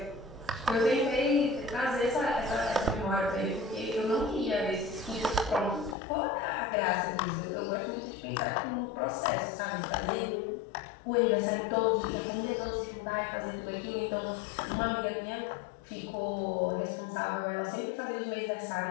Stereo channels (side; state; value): right; drops out; at 6.0 s